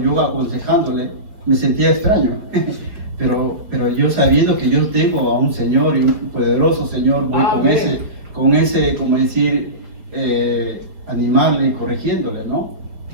aconsejándole, me sentía extraño, pero yo sabiendo que yo tengo a un Señor y un poderoso Señor, voy con ese, como decir, animarle y corrigiéndole, ¿no?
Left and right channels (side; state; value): left; late; 4.8 ms